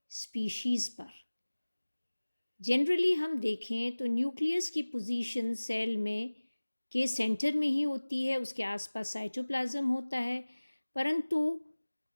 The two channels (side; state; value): both; inverted; correlation -1.00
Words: स्पीशीज़ पर। जनरली हम देखें तो न्यूक्लियस की पोजीशन सेल में के सेंटर में ही होती है, उसके आसपास साइटोप्लाज्म होता है। परंतु